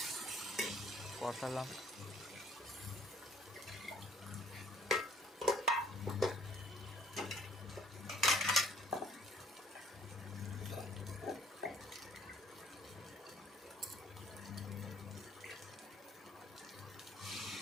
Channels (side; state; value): both; normal; correlation 0.59